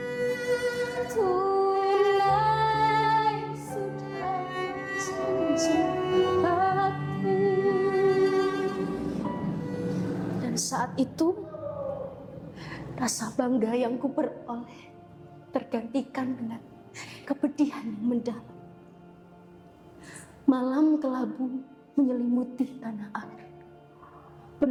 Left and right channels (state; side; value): identical; both; correlation 1.00